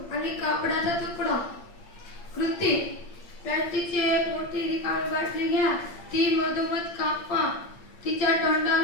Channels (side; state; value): right; late; 8.7 ms